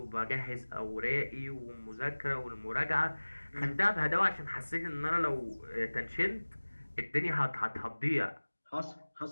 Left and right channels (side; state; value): both; inverted; correlation -1.00